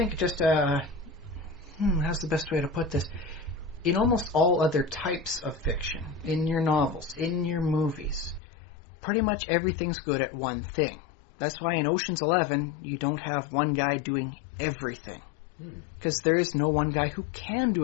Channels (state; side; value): drops out; right; at 8.4 s